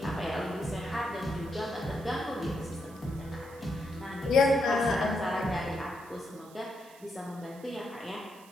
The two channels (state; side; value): noise; right; hiss, 23 dB below the sound